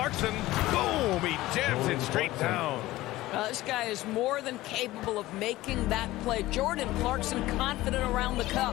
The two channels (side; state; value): right; quieter; 17.3 dB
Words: Boom! He jams it straight down. This guy is more than capable of making that play. Jordan Clarkson confident around the